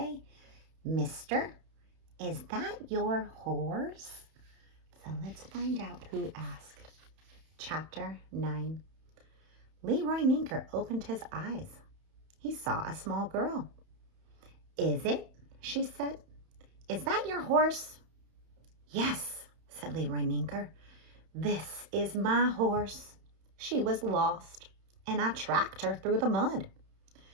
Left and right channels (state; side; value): late; left; 31 ms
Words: "Mister, is that your horse?" So let's find out who asked. Chapter 9. Leroy Ninker opened his eyes. He saw a small girl. "Is it?" she said. "Is that your horse?" "Yes," said Leroy Ninker. "This is my horse. She was lost, and I tracked her through the mud.